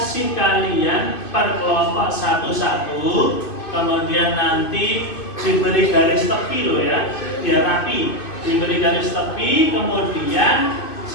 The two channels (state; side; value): late; right; 2.5 ms